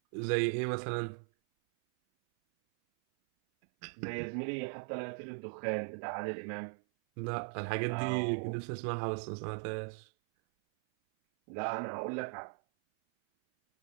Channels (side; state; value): left; silent; 52 dB below the other